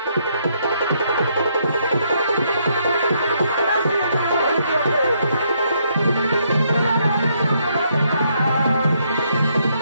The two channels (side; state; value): both; inverted; correlation -0.73